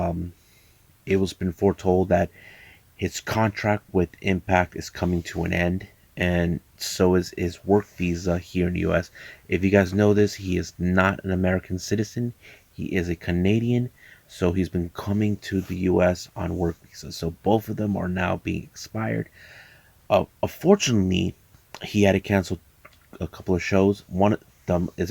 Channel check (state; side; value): identical; both; correlation 1.00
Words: It was been foretold that his contract with Impact is coming to an end, and so is his work visa here in the U.S. If you guys know this, he is not an American citizen. He is a Canadian, so he's been coming to the U.S. on work visas. So both of them are now being expired. Unfortunately, he had to cancel a couple of shows. One of them